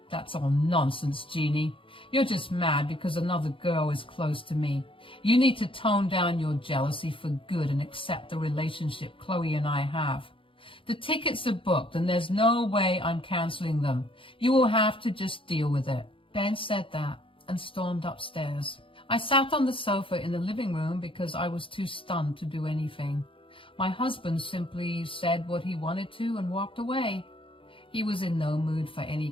That's all nonsense, Jeannie. You're just mad because another girl is close to me. You need to tone down your jealousy for good and accept the relationship Chloe and I have. The tickets are booked and there's no way I'm canceling them. You will have to just deal with it. Ben said that and stormed upstairs. I sat on the sofa in the living room because I was too stunned to do anything. My husband simply said what he wanted to and walked away. He was in no mood for any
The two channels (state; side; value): late; right; 0.25 ms